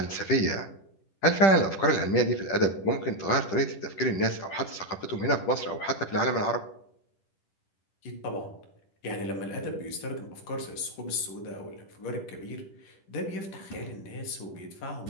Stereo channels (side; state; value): right; late; 10 ms